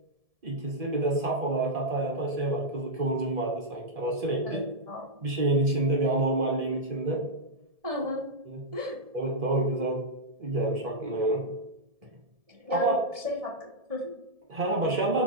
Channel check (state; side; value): late; left; 1.7 ms